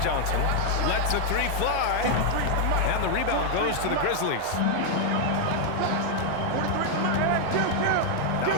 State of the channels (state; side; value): different; both; correlation 0.00